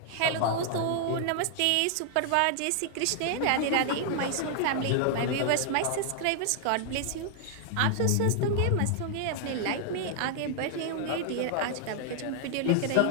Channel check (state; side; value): different; both; correlation -0.01